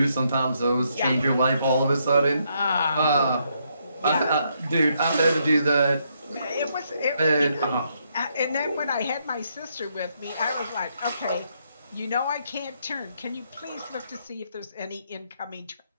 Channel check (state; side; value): inverted; both; correlation -0.75